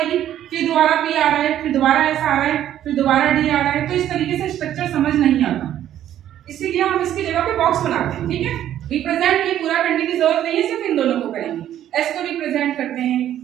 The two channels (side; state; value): left; quieter; 11.5 dB